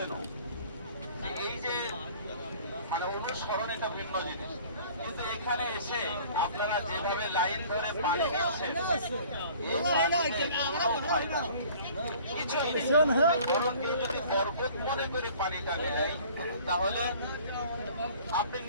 এই যে মানে অনুসরণ এটা ভিন্ন জিনিস, কিন্তু এখানে এসে আপনারা যেভাবে লাইন ধরে পানি নিচ্ছেন বরং কেউ যদি বরকত মনে করে পানিটা নেয় তাহলে আপনি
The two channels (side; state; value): both; inverted; correlation -0.50